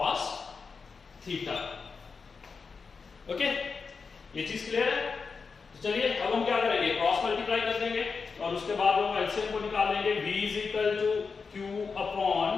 theta, okay, ये चीज क्लियर है। चलिए अब हम क्या करेंगे, क्रॉस मल्टीप्लाई कर देंगे और उसके बाद हम एलसीएम को निकाल लेंगे। v is equal to q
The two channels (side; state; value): right; quieter; 5.0 dB